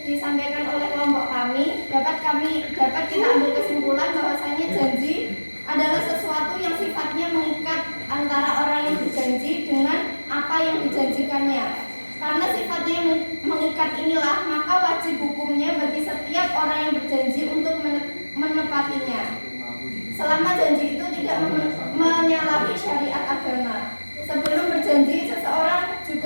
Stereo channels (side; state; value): both; inverted; correlation -1.00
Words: disampaikan oleh kelompok kami, dapat kita ambil kesimpulan bahwasanya janji adalah sesuatu yang sifatnya mengikat antara orang yang berjanji dengan apa yang dijanjikannya. Karena sifatnya mengikat inilah, maka wajib hukumnya bagi setiap orang yang berjanji untuk menepatinya. Selama janji itu tidak menyalahi syariat agama. Sebelum berjanji, seseorang